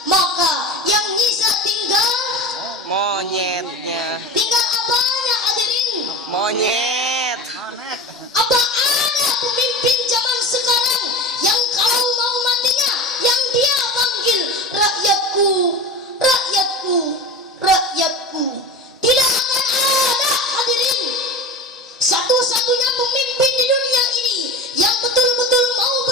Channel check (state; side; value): normal; both; correlation 0.31